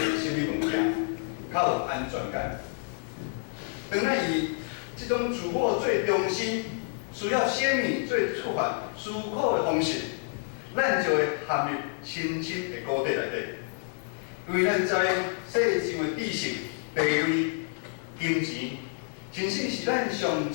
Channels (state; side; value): silent; right; 59 dB below the other